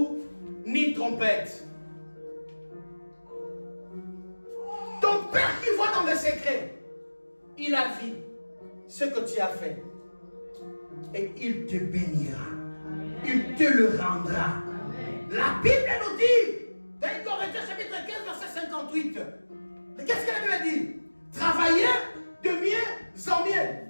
ni trompette. Ton Père qui voit dans les secrets, il a vu ce que tu as fait. Et il te bénira. Il te le rendra. La Bible nous dit, dans Corinthiens chapitre 15, verset 58, qu'est-ce que la Bible dit? Travaillez de mieux en mieux,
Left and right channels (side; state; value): both; inverted; correlation -1.00